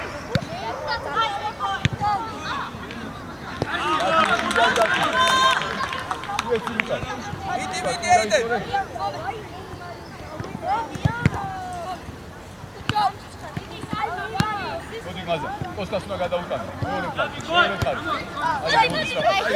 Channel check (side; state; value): both; identical; correlation 1.00